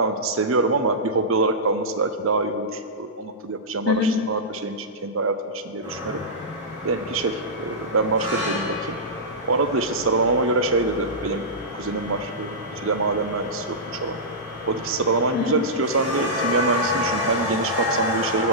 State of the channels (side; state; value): both; normal; correlation -0.14